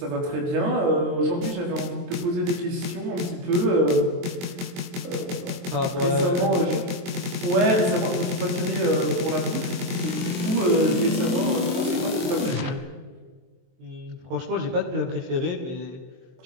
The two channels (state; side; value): late; left; 23 ms